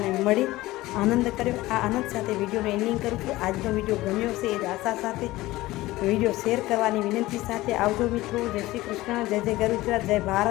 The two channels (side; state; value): right; quieter; 18.1 dB